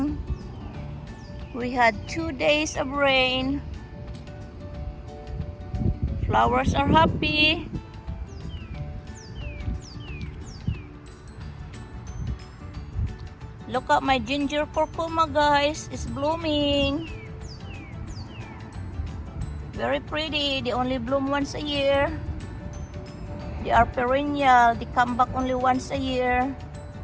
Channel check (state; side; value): identical; both; correlation 1.00